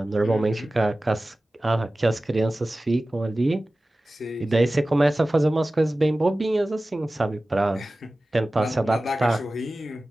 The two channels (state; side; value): normal; both; correlation 0.96